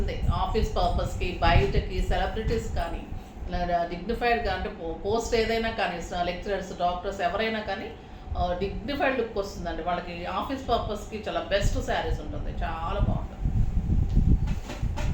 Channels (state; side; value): identical; both; correlation 1.00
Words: ఆఫీస్ పర్పస్కి, బయటకి, సెలబ్రిటీస్ కానీ, ఇలా డిగ్నిఫైడ్గా అంటే పోస్ట్ ఏదైనా కానీ, లెక్చరర్స్, డాక్టర్స్ ఎవరైనా కానీ డిగ్నిఫైడ్ లుక్ వస్తుందండి వాళ్ళకి. ఆఫీస్ పర్పస్కి చాలా బెస్ట్ శారీస్ ఉంటుంది, చాలా బాగుంటుంది.